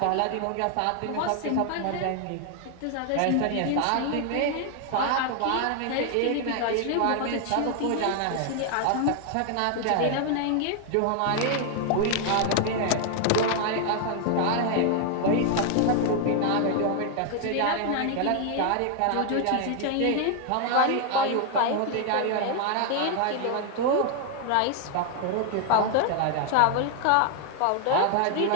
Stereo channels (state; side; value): different; both; correlation 0.00